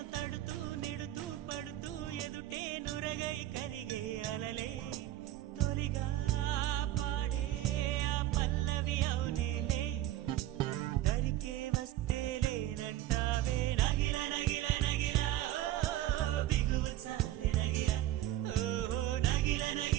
తడుతూ నెడుతూ పడుతూ ఎదుటే నురగై కరిగే అలలే తొలిగా పాడే ఆ పల్లవి అవునేలే దరికే వస్తే లేనంటావే నగిల నగిల నగిల బిగువ చాలే నగిల ఓహో నగిల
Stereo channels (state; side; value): quieter; left; 14.1 dB